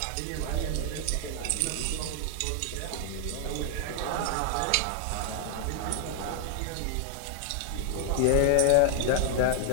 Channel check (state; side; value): different; both; correlation 0.00